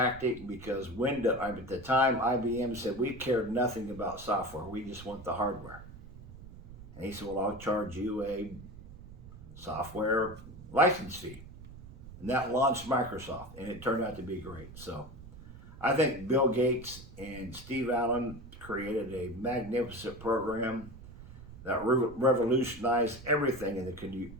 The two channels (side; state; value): right; noise; rumble, 16 dB below the sound